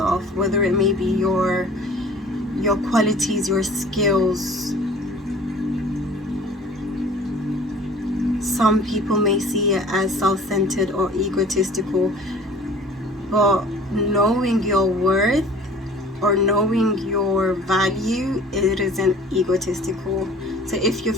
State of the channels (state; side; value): normal; both; correlation 0.47